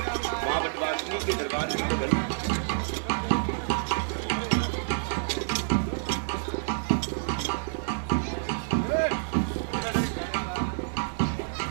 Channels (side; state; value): left; silent; digital silence